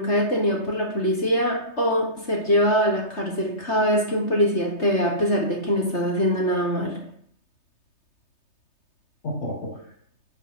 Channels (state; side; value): late; right; 3.3 ms